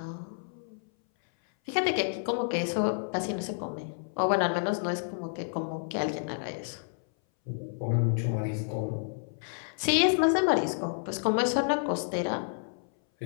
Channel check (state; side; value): silent; right; 58 dB below the other